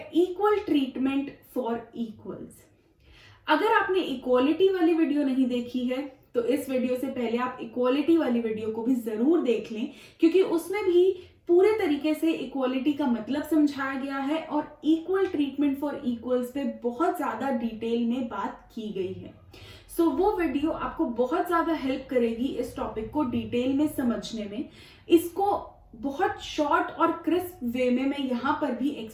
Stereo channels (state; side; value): identical; both; correlation 1.00